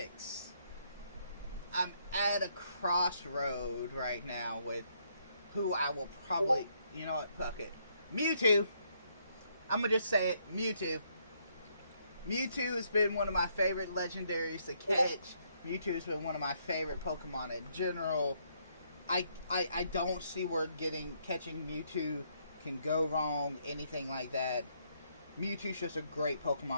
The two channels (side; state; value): both; inverted; correlation -0.72